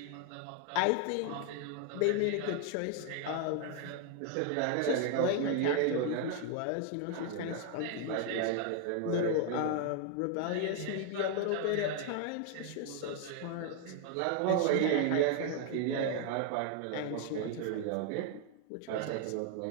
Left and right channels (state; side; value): different; both; correlation 0.01